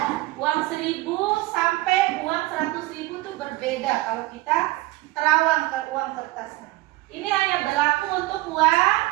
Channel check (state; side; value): quieter; left; 19.3 dB